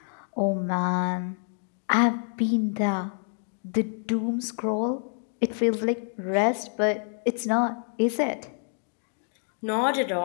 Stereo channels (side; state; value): right; silent; 57 dB below the other